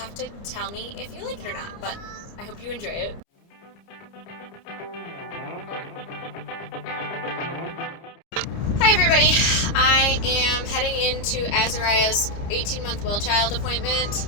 to tell me if you like it or not, but I hope you enjoy it. Hi everybody, I am heading into Azariah's 18-month well child appointment.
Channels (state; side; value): late; right; 30 ms